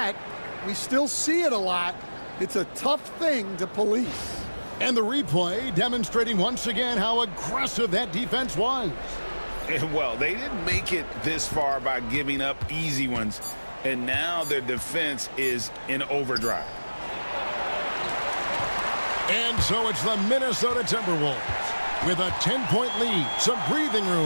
we still see it a lot. It's a tough thing to police. And the replay demonstrating once again how aggressive that defense was. And well, they didn't make it this far by giving up easy ones. And now their defense is in overdrive. And so it's the Minnesota Timberwolves with a 10-point lead. Some breathing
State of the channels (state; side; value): inverted; both; correlation -1.00